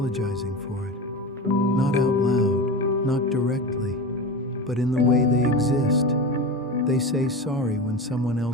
for it. Not out loud, not directly, but in the way they exist. They say sorry when someone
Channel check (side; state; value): both; normal; correlation 0.26